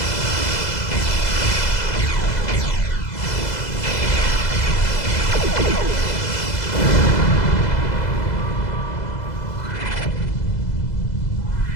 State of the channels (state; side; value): late; right; 2.0 ms